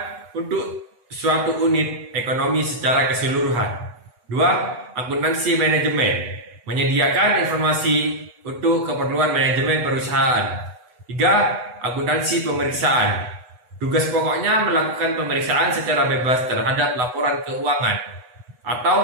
untuk suatu unit ekonomi secara keseluruhan. 2. Akuntansi manajemen menyediakan informasi untuk keperluan manajemen perusahaan. 3. Akuntansi pemeriksaan. Tugas pokoknya melakukan pemeriksaan secara bebas terhadap laporan keuangan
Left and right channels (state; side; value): late; left; 8.1 ms